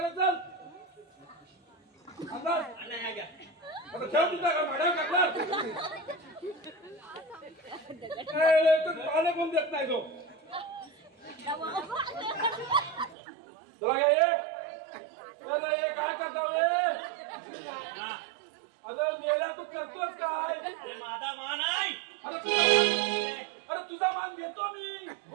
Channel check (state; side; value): drops out; left; at 13.2 s